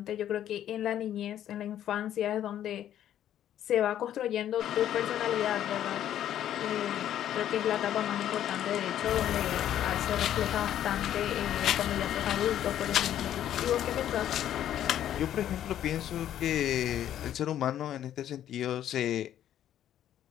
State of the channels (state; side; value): quieter; right; 11.2 dB